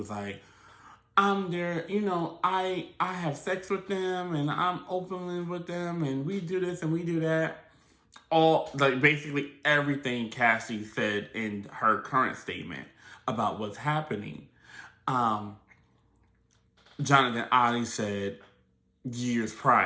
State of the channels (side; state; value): both; identical; correlation 1.00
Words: like, I'm there, I have sex with them and I'm openly with them and we do this and we do that. All, like, basically everything Cassie said in her current statement about what's happening. Um, Jonathan Oddie said years